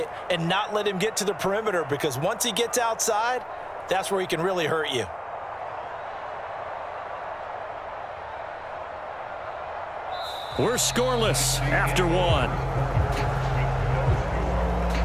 and not let him get to the perimeter, because once he gets outside, that's where he can really hurt you. We're scoreless after one.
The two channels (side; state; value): both; identical; correlation 1.00